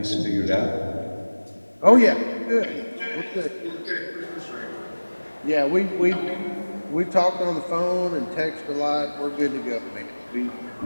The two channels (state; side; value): inverted; both; correlation -1.00